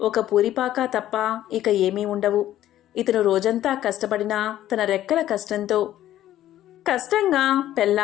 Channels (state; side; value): quieter; right; 13.0 dB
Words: ఒక పూరిపాక తప్ప ఇక ఏమీ ఉండవు. ఇతను రోజంతా కష్టపడినా తన రెక్కల కష్టంగా